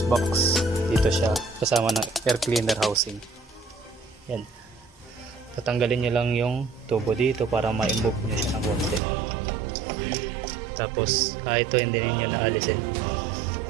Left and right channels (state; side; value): drops out; left; at 9.0 s